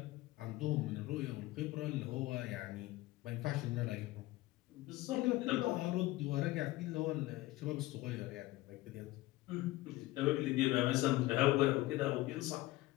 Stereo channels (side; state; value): right; quieter; 18.3 dB